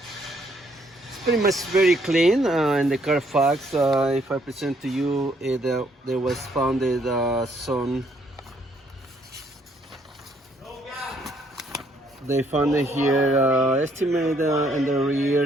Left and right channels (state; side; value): normal; both; correlation 0.68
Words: It's pretty much very clean. In the Carfax, if I present to you, there was founded some. They found it here, estimated in the rear